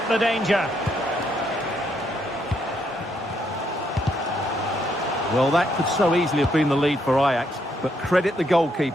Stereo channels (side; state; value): both; normal; correlation 0.75